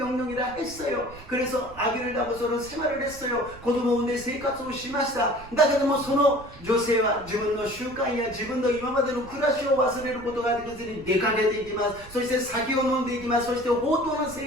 했어요. 그래서 아기를 낳고서는 생활을 했어요. 子供を産んで生活をしました。だけどもその女性は自分の習慣や自分の今までの暮らしを忘れることができずに出かけていきます。そして酒を飲んでいきます。そして放蕩な生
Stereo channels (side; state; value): right; noise; rumble, 19 dB below the sound